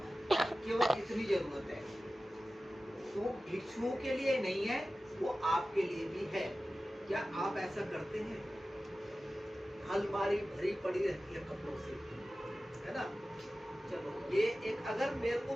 है, केवल इतनी जरूरत है। तो भिक्षुओं के लिए नहीं है, वो आपके लिए भी है। क्या आप ऐसा करते हैं? अलमारी भरी पड़ी रहती है कपड़ों से, है ना। चलो ये एक, अगर मेरे को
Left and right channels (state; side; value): normal; both; correlation 0.95